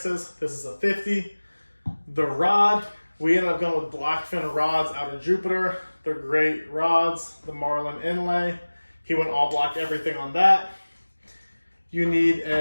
This is a 50. The rod, we ended up going with blackfin rods out of Jupiter. They're great rods. The Marlin inlay, he went all black, everything on that. You need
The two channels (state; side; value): inverted; both; correlation -1.00